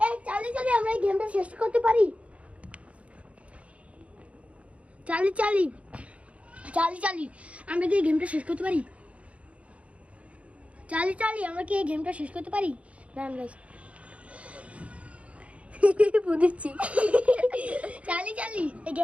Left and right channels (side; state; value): left; late; 0.063 ms